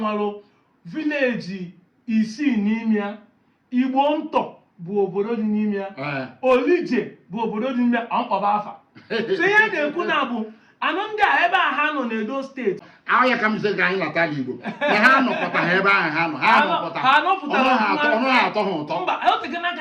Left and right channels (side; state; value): both; identical; correlation 1.00